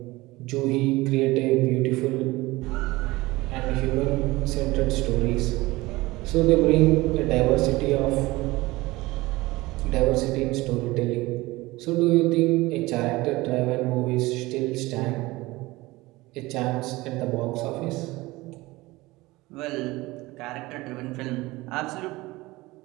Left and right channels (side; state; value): left; quieter; 20.4 dB